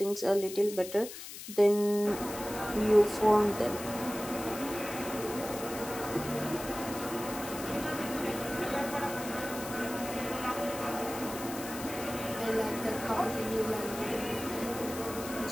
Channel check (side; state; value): left; noise; hiss, 11 dB below the sound